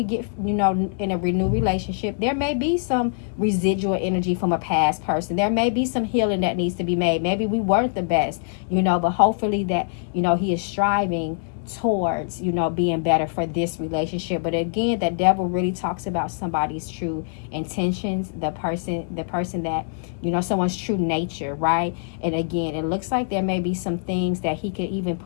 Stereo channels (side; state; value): right; silent; digital silence